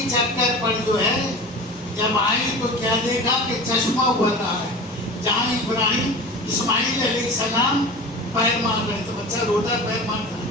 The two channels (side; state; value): both; normal; correlation 0.34